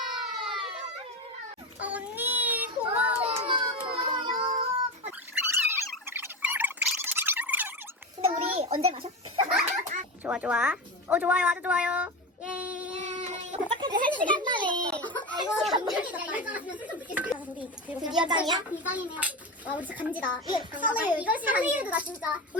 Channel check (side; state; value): both; normal; correlation 0.21